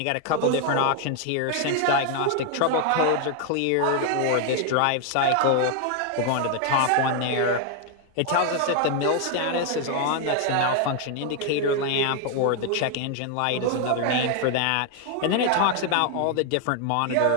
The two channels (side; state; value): both; different; correlation 0.00